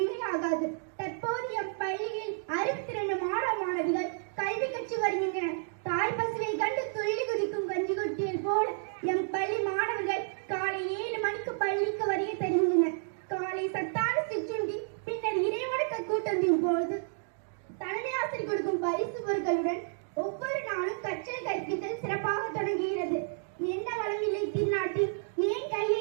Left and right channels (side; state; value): left; silent; digital silence